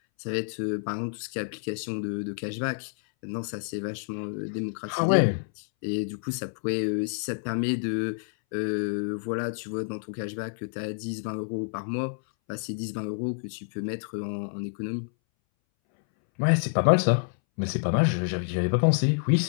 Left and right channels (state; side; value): silent; right; 59 dB below the other